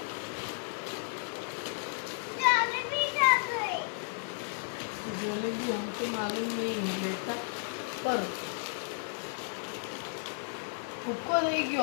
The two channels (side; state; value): right; silent; 56 dB below the other